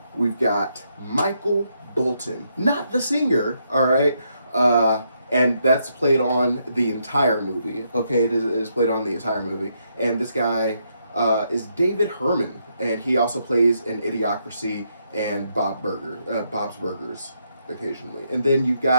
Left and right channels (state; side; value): inverted; both; correlation -0.77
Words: we've got Michael Bolton, not the singer. All right. And that's played on the entire movie. Okay, it is played on the entire movie, and this guy is David Herman, and he also plays in Idiocracy and Bob's Burgers occasionally. And then you've